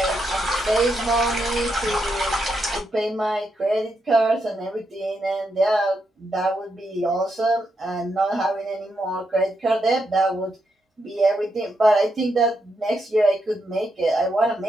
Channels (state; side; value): normal; both; correlation 0.82